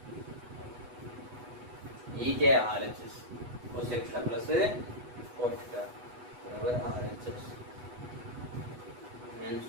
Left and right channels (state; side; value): late; left; 8.1 ms